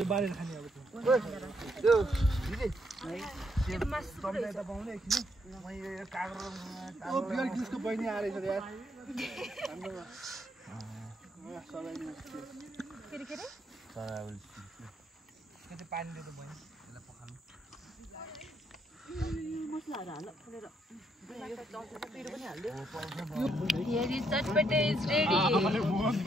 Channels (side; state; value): both; normal; correlation 0.74